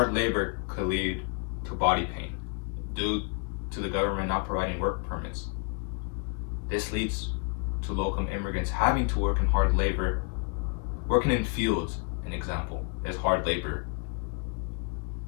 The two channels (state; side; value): quieter; right; 36.4 dB